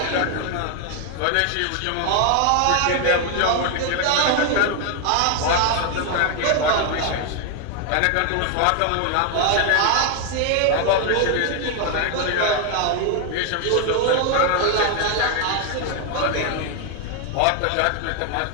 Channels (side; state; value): both; different; correlation 0.00